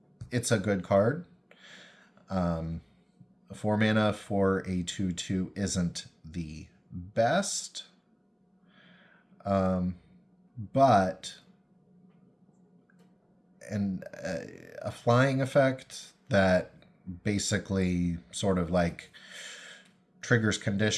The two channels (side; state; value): both; identical; correlation 1.00